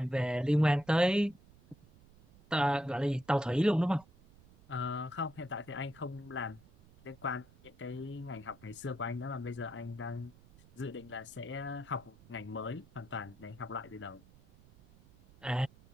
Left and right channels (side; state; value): right; noise; rumble, 25 dB below the sound